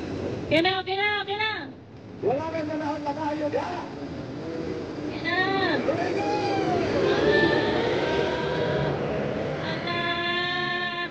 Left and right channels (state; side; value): identical; both; correlation 1.00